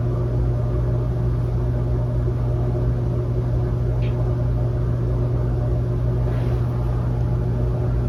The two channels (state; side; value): identical; both; correlation 1.00